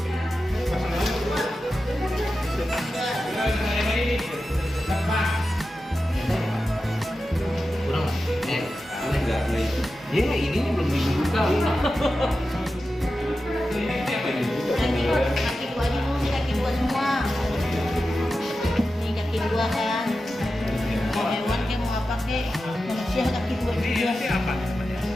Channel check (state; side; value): normal; both; correlation 0.92